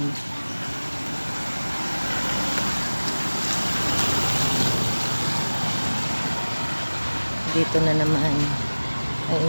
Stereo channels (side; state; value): both; inverted; correlation -1.00